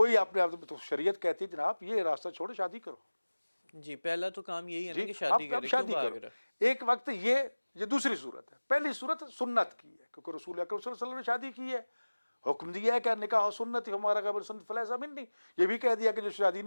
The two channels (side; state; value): both; inverted; correlation -1.00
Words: اپنے آپ تو شریعت کہتی ہے جناب یہ راستہ چھوڑو، شادی کرو. جی پہلا تو کام یہی ہے نا جی کہ شادی اب کرے، کیوں شادی بھاگ کرو. رہا؟ ایک وقت یہ دوسری صورت ہے. پہلی صورت سنت کی ہے کیونکہ رسول اکرم صلی اللہ علیہ وسلم نے شادی کی ہے، حکم دیا ہے کہ نکاح سنت ہمارا قبل سنت فلیس منی. یہ بھی کہہ دیا کہ جو شادی